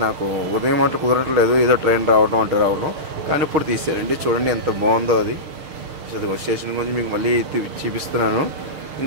నాకు ఉదయం అట్లా కుదరట్లేదు, ఏదో ట్రైన్ రావడం, కానీ ఇప్పుడు తీసారండి. చూడండి ఎంత బాగుందో అది. అదిగో స్టేషన్ గురించి మీకు మళ్ళీ చూపిస్తున్నాను.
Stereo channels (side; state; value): left; late; 6.6 ms